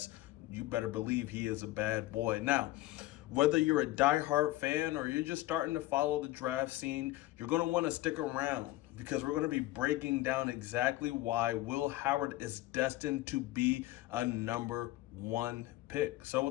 you better believe he is a bad boy. Now, whether you're a diehard fan or you're just starting to follow the draft scene, you're going to want to stick around because we're going to be breaking down exactly why Will Howard is destined to be a #1 pick. So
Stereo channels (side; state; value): right; quieter; 17.0 dB